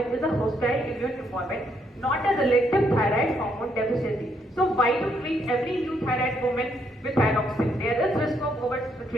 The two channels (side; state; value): both; normal; correlation 0.74